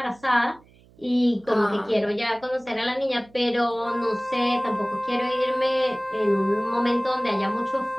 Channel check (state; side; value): noise; right; hum, 28 dB below the sound